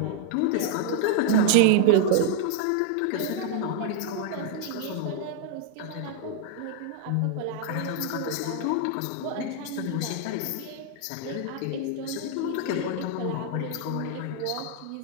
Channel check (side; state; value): both; different; correlation 0.00